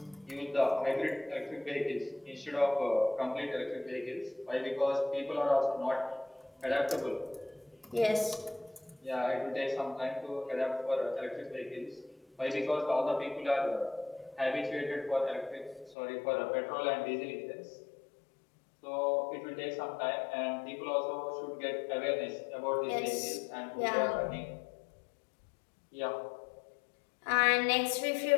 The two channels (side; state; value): right; drops out; at 16.0 s